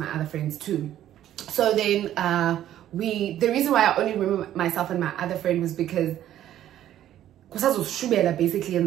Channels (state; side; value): quieter; left; 12.0 dB